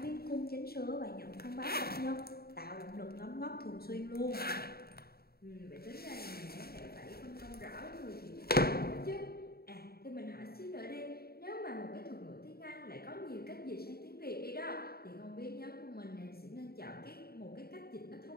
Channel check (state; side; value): late; right; 0.45 ms